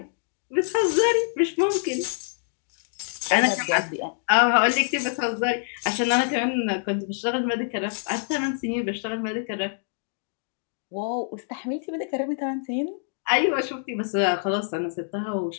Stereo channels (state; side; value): silent; right; digital silence